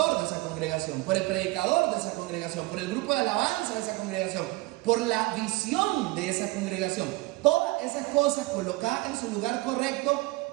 de esa congregación, por el predicador de esa congregación, por el grupo de alabanza de esa congregación, por la visión de esa congregación. Todas esas cosas colocadas en su lugar correcto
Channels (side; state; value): left; quieter; 21.7 dB